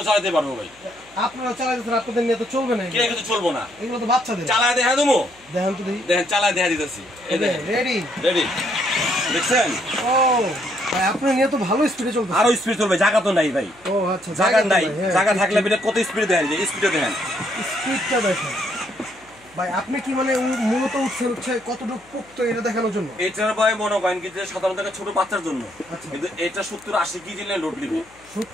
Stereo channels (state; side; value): noise; left; hum, 29 dB below the sound